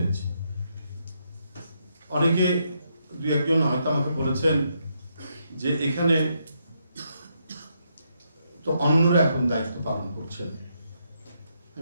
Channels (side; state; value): both; inverted; correlation -0.78